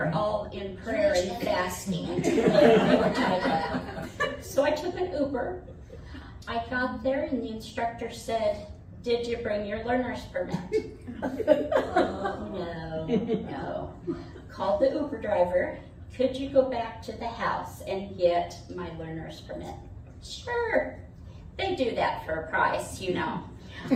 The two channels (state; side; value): identical; both; correlation 1.00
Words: all in prayer and fasting. They were tied up. So I took an Uber. I got there and the instructor said, did you bring your learner's permit? No. Called the Uber driver. Could you go back to the house and get my learner's permit? Sure. They do that for a price, I